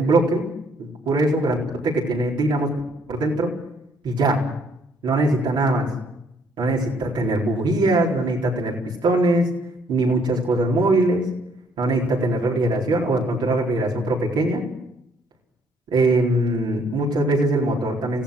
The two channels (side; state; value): both; normal; correlation 0.65